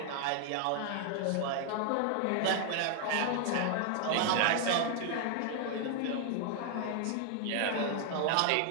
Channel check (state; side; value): different; both; correlation 0.00